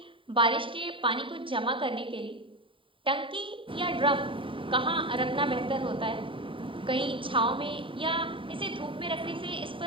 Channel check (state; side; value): late; left; 0.25 ms